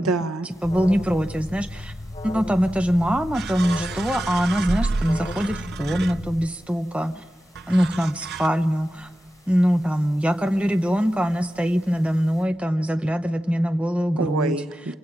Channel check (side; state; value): both; normal; correlation 0.92